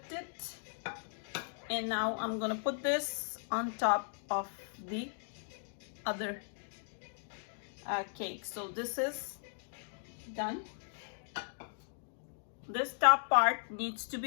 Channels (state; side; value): silent; right; digital silence